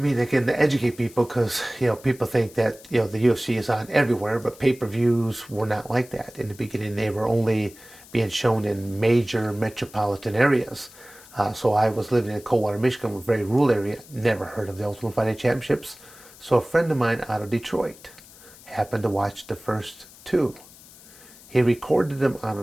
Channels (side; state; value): left; noise; hiss, 21 dB below the sound